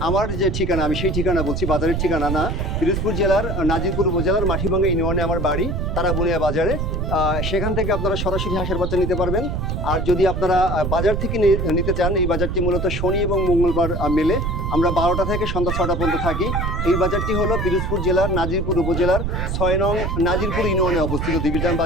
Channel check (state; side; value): noise; right; rumble, 1 dB below the sound